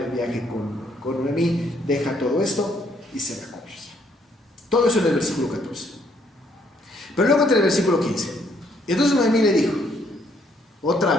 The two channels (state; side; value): normal; both; correlation 0.68